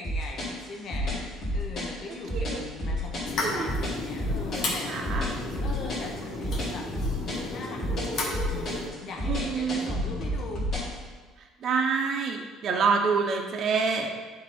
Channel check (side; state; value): both; normal; correlation 0.61